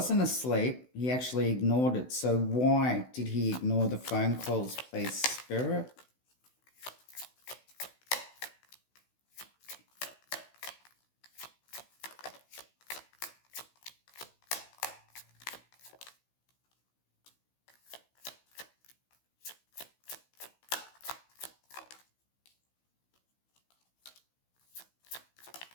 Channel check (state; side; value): late; right; 16 ms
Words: asleep. He actually ignored it. So why did he ignore the phone calls, please, Spirit?